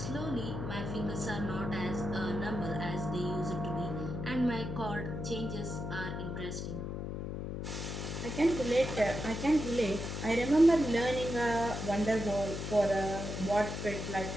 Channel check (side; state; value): left; noise; hum, 5 dB below the sound